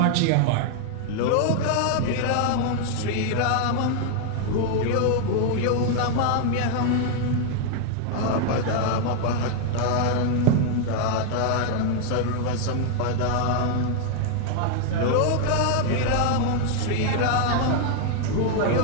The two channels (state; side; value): different; both; correlation 0.00